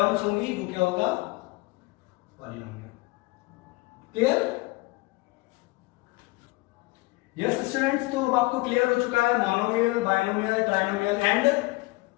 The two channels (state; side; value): quieter; right; 23.6 dB